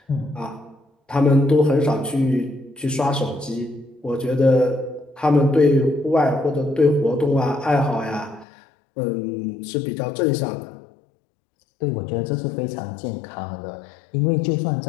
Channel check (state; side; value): drops out; right; at 8.5 s